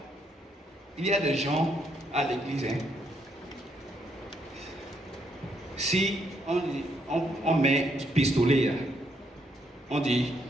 il y a des gens à l'église, hein? Si on met pistolet là, on dit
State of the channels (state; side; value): normal; both; correlation 0.74